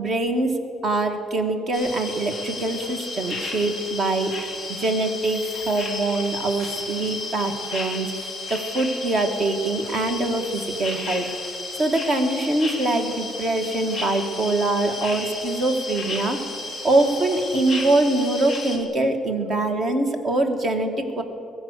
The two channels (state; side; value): normal; both; correlation 0.67